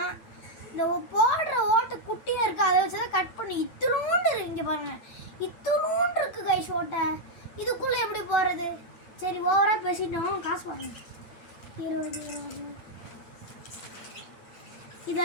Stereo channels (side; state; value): right; late; 9.0 ms